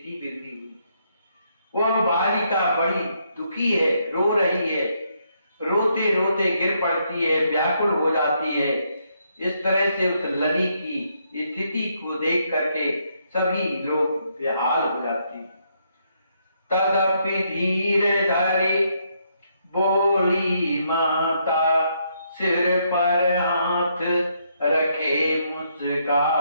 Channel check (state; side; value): inverted; both; correlation -0.75